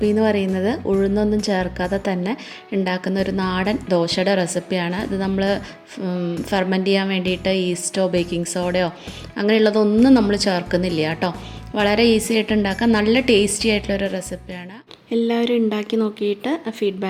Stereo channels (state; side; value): identical; both; correlation 1.00